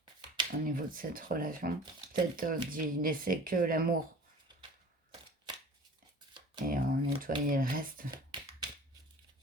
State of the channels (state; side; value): normal; both; correlation 0.44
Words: au niveau de cette relation. Peut-être d'y laisser que l'amour et nettoyer le reste,